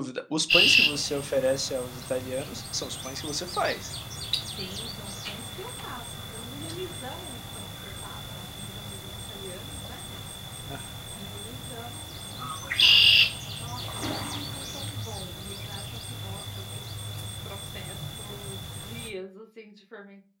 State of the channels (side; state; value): both; identical; correlation 1.00